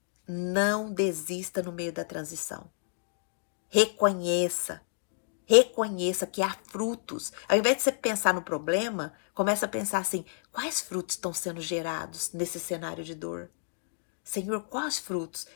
não desista no meio da transição. Reconheça que há frutos. Ao invés de você pensar no problema, começa a pensar assim, quais frutos estão sendo gerados nesse cenário de dor? Senhor, quais frutos?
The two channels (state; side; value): silent; right; digital silence